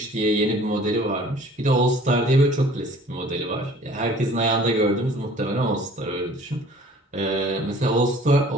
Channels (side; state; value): both; normal; correlation 0.51